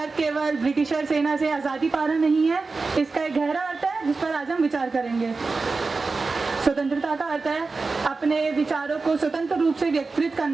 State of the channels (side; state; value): left; quieter; 4.0 dB